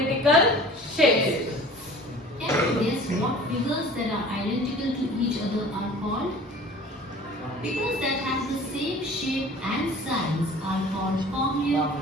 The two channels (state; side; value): normal; both; correlation 0.45